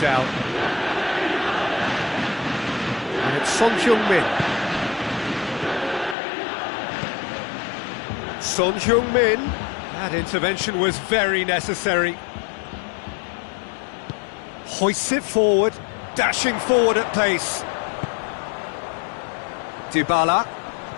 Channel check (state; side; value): drops out; right; at 6.2 s